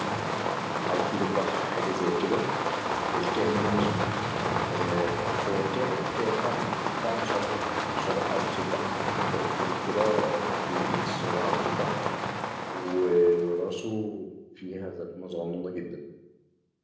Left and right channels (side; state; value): both; identical; correlation 1.00